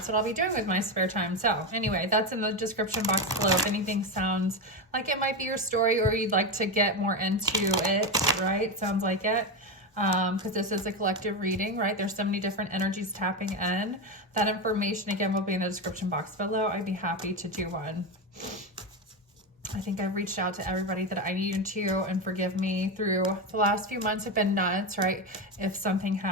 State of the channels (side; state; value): both; normal; correlation 0.14